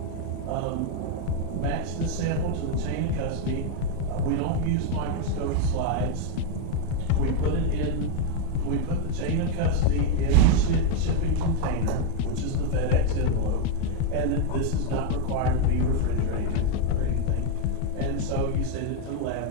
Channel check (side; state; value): both; different; correlation 0.02